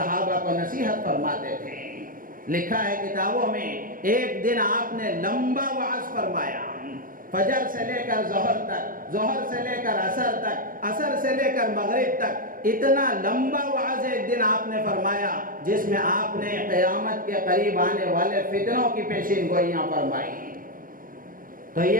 کو نصیحت فرماتے تھے۔ لکھا ہے کتابوں میں، ایک دن آپ نے لمبا وعظ فرمایا، فجر سے لے کر ظہر تک، ظہر سے لے کر عصر تک، عصر سے لے کر مغرب تک، اتنا لمبا وعظ ایک دن آپ نے فرمایا جس میں آپ نے قیامت کے قریب آنے والے فتنوں کی پیشین گوئیاں فرمائی۔ تو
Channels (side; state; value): left; late; 0.40 ms